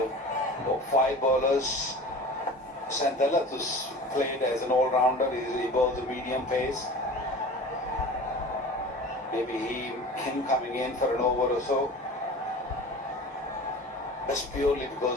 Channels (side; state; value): both; normal; correlation 0.38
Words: 5 bowlers. Santella, who's played as an all-rounder, he bowls a medium pace. Maybe him coming in for an over or so. That's purely